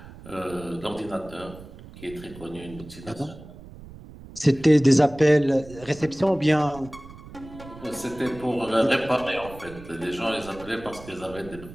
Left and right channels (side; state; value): right; noise; rumble, 17 dB below the sound